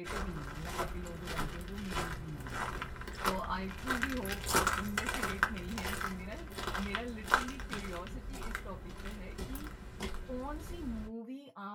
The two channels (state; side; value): identical; both; correlation 1.00